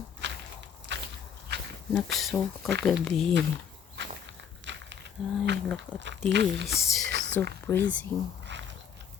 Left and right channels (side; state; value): right; quieter; 7.9 dB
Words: Nag-snow kagabi. Ay, look at this. So freezing.